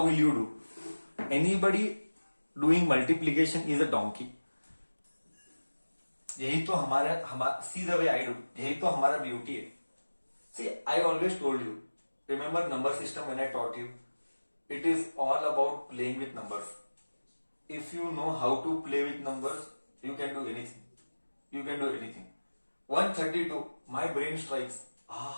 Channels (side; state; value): both; inverted; correlation -1.00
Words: will you do? Anybody doing multiplication is a donkey. यही तो हमारा सी the way I do, यही तो हमारा beauty है। See I always told you, remember number system when I taught you, it is all about playing with numbers. If you know how to play with numbers, you can do anything. 132, my brain strikes,